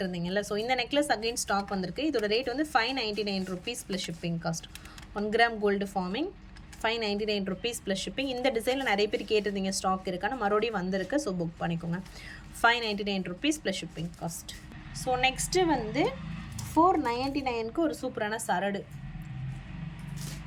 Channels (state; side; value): identical; both; correlation 1.00